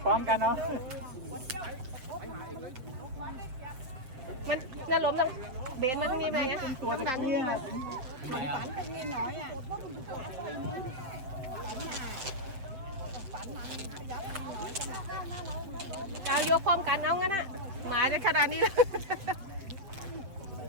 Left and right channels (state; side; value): late; left; 7.6 ms